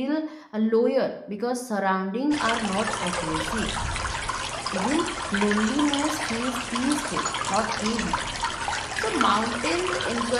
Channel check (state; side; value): identical; both; correlation 1.00